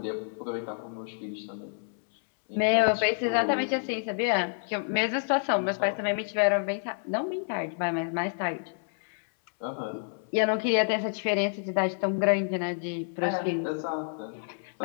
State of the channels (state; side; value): silent; right; 59 dB below the other